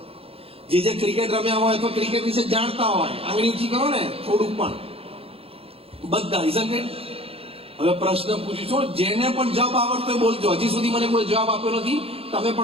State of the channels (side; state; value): left; late; 0.28 ms